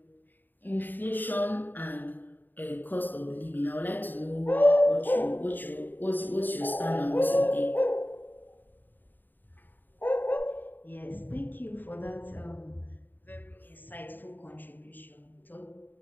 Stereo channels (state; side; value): late; right; 0.090 ms